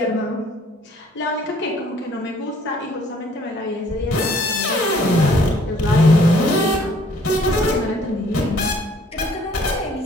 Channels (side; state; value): both; normal; correlation 0.59